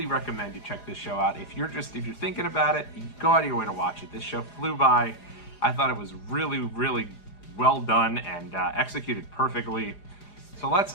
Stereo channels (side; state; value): right; late; 4.9 ms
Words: recommend you check this show out. If you're thinking about it, go out of your way to watch it. This show flew by. I thought it was really, really well done and executed perfectly. So